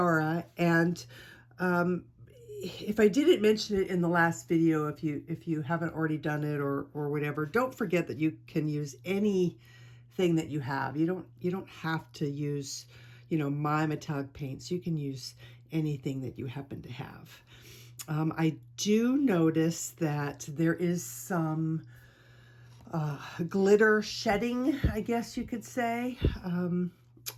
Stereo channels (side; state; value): both; identical; correlation 1.00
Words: And if I didn't mention it in the last video, if you haven't already done it or whatever, don't forget that you can use any thing that you have. You don't have to use, my metallic paints. You can use anything that you happen to have. I do notice that there is some glitter shedding, I guess you could say.